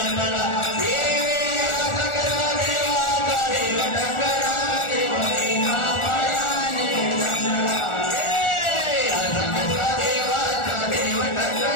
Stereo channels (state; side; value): late; right; 1.4 ms